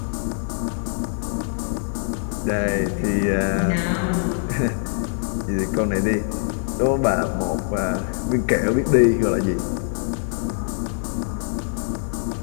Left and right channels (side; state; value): right; silent; digital silence